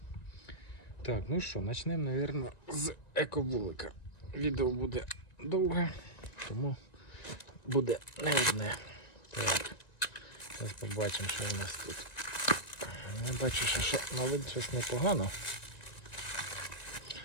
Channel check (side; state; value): right; late; 1.9 ms